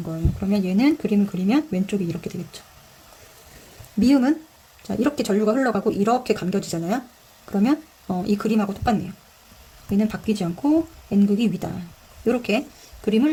거예요. 그러면 얘는 그림을 그리면 왼쪽이 이렇게 되겠죠. 미음은 자, 이렇게 전류가 흘러가고 이렇게 감겨지잖아요. 그러면 이 그림하고 똑같네요. 얘는 바뀌지 않고 N극이 위다. 이렇게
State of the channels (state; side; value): identical; both; correlation 1.00